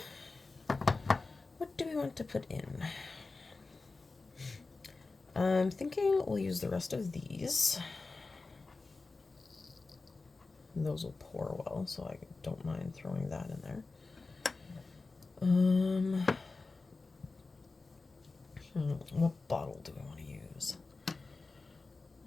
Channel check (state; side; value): quieter; right; 3.7 dB